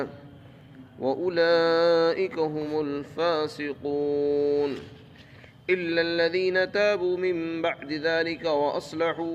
وأولئك هم الفاسقون إلا الذين تابوا من بعد ذلك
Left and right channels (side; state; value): both; identical; correlation 1.00